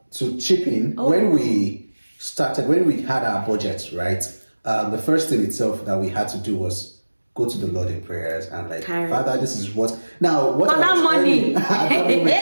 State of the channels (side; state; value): both; inverted; correlation -1.00